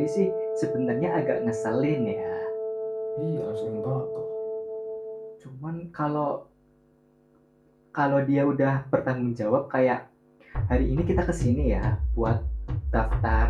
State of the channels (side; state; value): both; identical; correlation 1.00